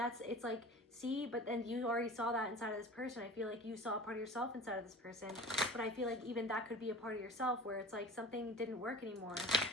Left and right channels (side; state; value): both; normal; correlation 0.38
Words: like, see, but then you already saw that inside of this person. I feel like you saw a part of yourself inside of this person. But I feel like even that could be a part of yourself where it's like something didn't work anymore,